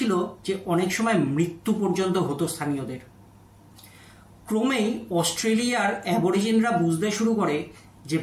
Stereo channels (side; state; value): both; identical; correlation 1.00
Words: যে অনেক সময় মৃত্যু পর্যন্ত হতো স্থানীয়দের। ক্রমেই অস্ট্রেলিয়ার অ্যাবরিজিনরা বুঝতে শুরু করে যে